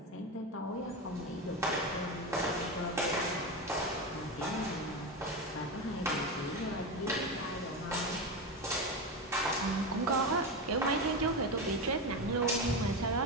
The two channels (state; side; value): normal; both; correlation 0.18